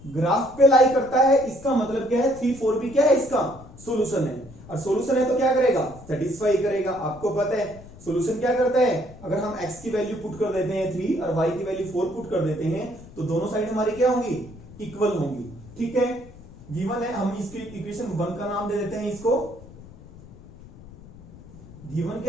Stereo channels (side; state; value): left; noise; rumble, 19 dB below the sound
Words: ग्राफ पे लाई करता है, इसका मतलब क्या है 3 4 भी क्या है, इसका सॉल्यूशन है, और सॉल्यूशन है तो क्या करेगा, सेटिस्फाई करेगा। आपको पता है सॉल्यूशन क्या करता है, अगर हम x की वैल्यू पुट कर देते हैं 3 और y की वैल्यू 4 पुट कर देते हैं तो दोनों साइड हमारी क्या होंगी, इक्वल होंगी। ठीक है, गिवन है, हम इसकी इक्वेशन 1 का नाम दे देते हैं इसको। गिवन